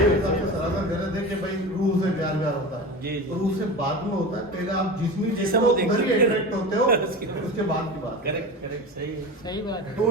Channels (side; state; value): both; normal; correlation 0.29